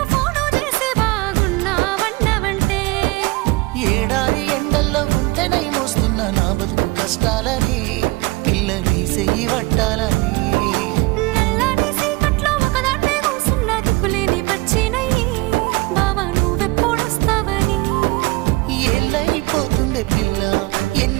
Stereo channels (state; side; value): quieter; left; 22.8 dB